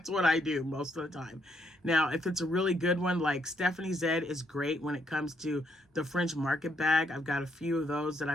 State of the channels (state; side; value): normal; both; correlation 0.74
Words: what I do most of the time. Now, if it's a really good one, like Stephanie Zed is great when it comes to the French market bag. I've got a few of those that